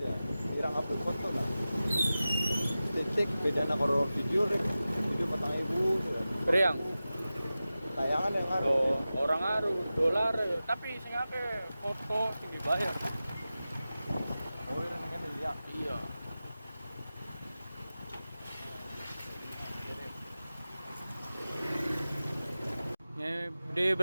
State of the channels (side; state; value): both; inverted; correlation -0.95